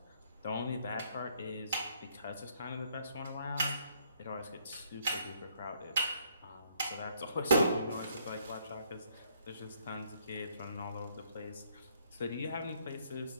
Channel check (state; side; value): inverted; both; correlation -0.69